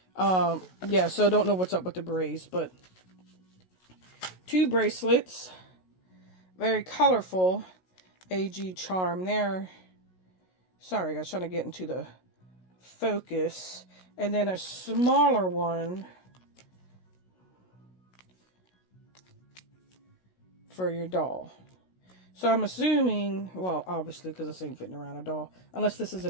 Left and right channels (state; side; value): late; right; 16 ms